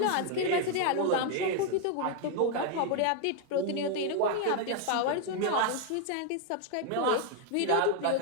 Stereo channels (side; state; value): both; different; correlation 0.01